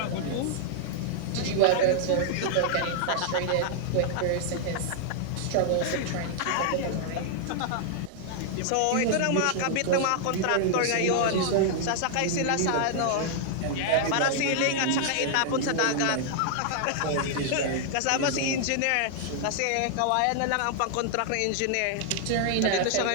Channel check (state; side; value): different; both; correlation -0.01